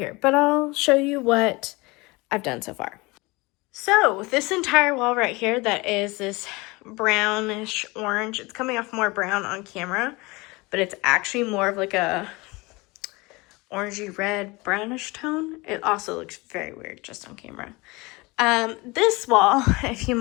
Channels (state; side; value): quieter; right; 24.3 dB